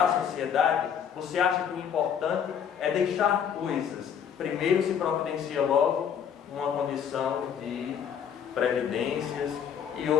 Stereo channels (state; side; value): quieter; right; 8.1 dB